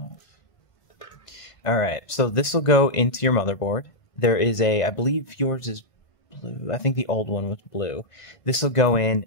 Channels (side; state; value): right; late; 1.5 ms